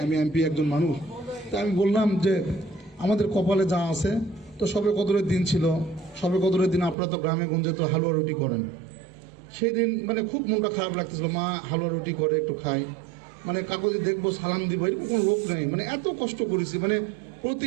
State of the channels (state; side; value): drops out; left; at 7.0 s